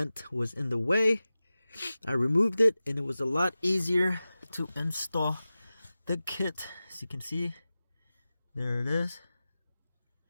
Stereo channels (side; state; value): both; inverted; correlation -0.95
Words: was in the way. I removed it and it was a lot easier to install the kit. As you can see, there it is,